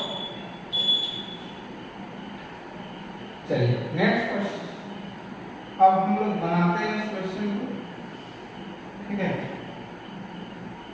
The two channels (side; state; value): both; identical; correlation 1.00